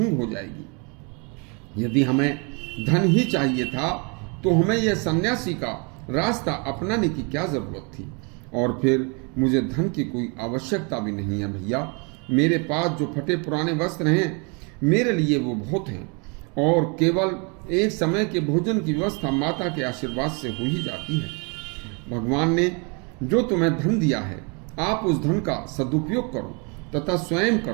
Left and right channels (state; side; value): quieter; left; 33.4 dB